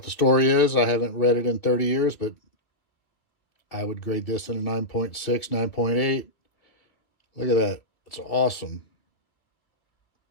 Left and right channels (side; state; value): right; late; 2.7 ms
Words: the story is. I haven't read it in 30 years, but I would grade this in a 9.6, 9.8. Look at that. It's awesome.